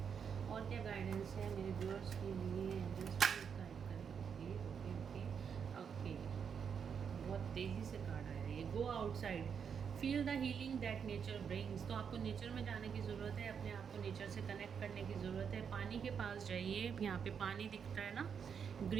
और क्या गाइडेंस है मेरे व्यूअर्स के लिए? एंजल्स प्लीज गाइड करें। ओके ओके ओके ओके, बहुत तेज़ी से कार्ड आया ये। Go outside, feel the healing that nature brings. तो आपको नेचर में जाने की ज़रूरत है, अपने आप को नेचर से कनेक्ट करने की ज़रूरत है। पानी के पास जाइए, यहाँ पे पानी दिखता है ना,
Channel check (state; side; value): quieter; left; 7.0 dB